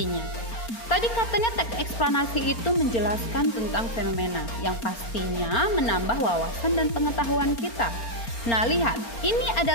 Tadi katanya teks eksplanasi itu menjelaskan tentang fenomena yang pastinya menambah wawasan dan pengetahuan kita. Nah, lihat, ini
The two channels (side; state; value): right; late; 4.4 ms